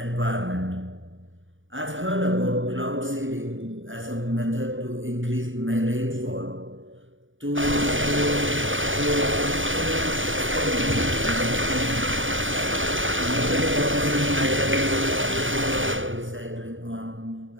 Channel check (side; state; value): left; late; 0.57 ms